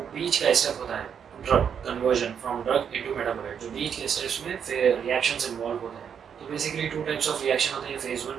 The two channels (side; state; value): left; quieter; 7.7 dB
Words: बीच का स्टेप होता है drug conversion from drug into metabolite, जो बीच के स्टेप्स में फिर रिएक्शंस इन्वॉल्व होते हैं। तो basically two types of reaction होते हैं, phase